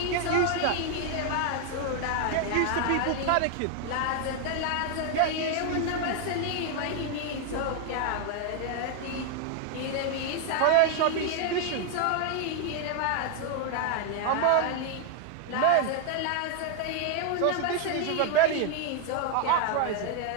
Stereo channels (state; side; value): different; both; correlation 0.00